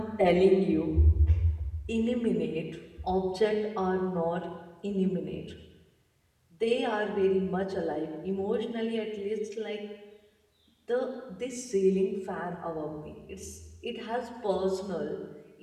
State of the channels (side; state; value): both; identical; correlation 1.00